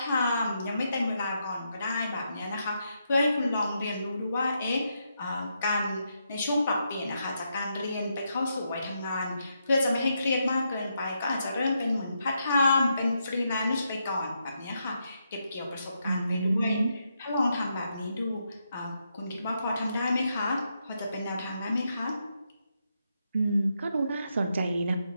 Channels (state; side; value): inverted; both; correlation -0.81